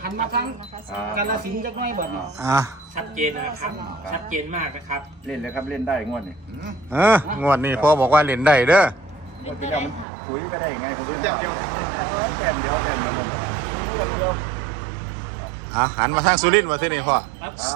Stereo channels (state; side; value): drops out; left; at 10.1 s